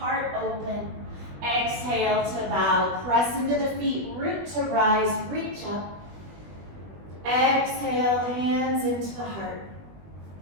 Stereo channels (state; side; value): late; left; 20 ms